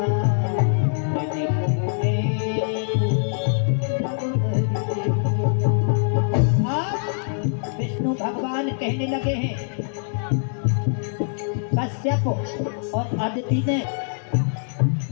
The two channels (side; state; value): right; silent; digital silence